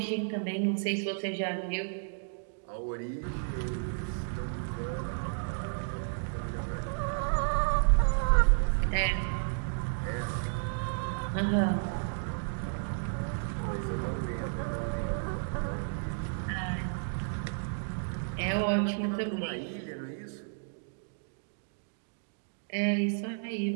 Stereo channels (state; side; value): silent; left; digital silence